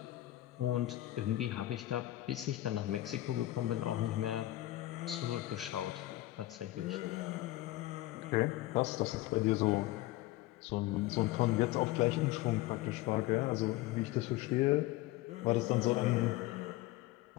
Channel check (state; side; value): quieter; right; 16.7 dB